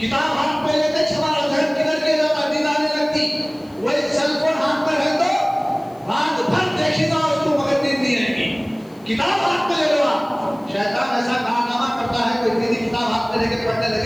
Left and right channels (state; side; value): noise; left; hiss, 30 dB below the sound